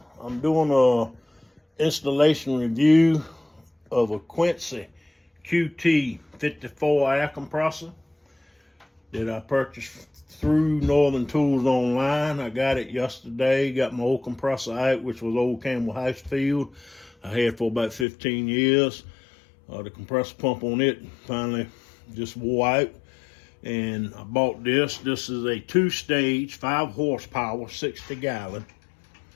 I'm doing a installation review of a Quincy QT 54 air compressor that I purchased through Northern Tools online. I got it yesterday, got my old compressor out, which was old Campbell House Field. I had for about 15 years. The compressor pump on it finally just wore out. And I bought this. This is a 2-stage, 5 horsepower, 60-gallon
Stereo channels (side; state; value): right; drops out; at 18.1 s